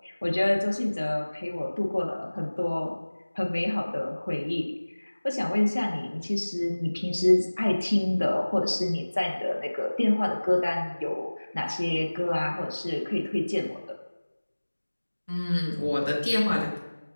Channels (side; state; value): both; inverted; correlation -1.00